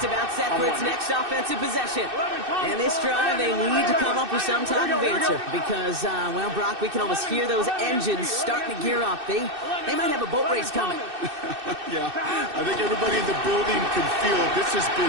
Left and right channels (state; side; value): late; left; 2.6 ms